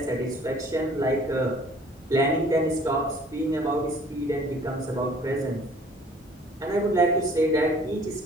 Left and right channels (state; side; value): normal; both; correlation 0.54